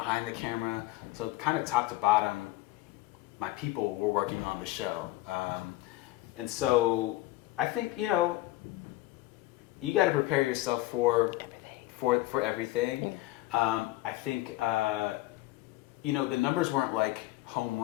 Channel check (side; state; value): right; quieter; 17.7 dB